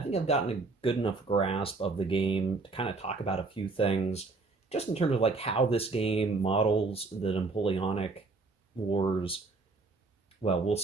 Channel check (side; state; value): left; quieter; 3.8 dB